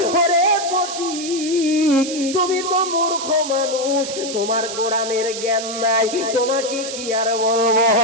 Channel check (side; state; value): right; noise; hiss, 8 dB below the sound